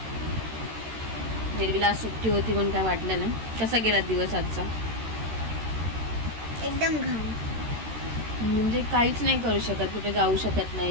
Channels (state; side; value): late; left; 13 ms